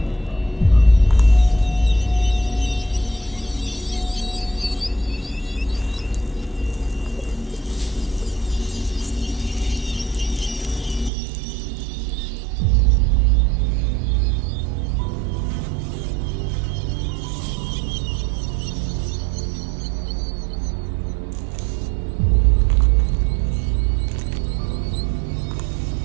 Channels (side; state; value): left; drops out; at 11.1 s